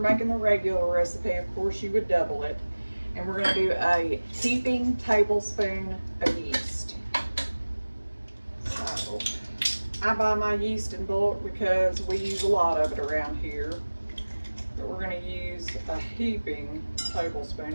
making the regular recipe, of course you would double it. And we're going to do a heaping tablespoon of yeast. So I buy my yeast in bulk because we use a lot of it around here. But we're going to use a heaping tablespoon,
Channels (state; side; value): inverted; both; correlation -1.00